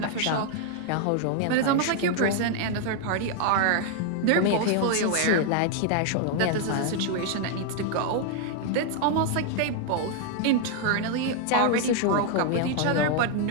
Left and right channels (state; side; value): different; both; correlation 0.00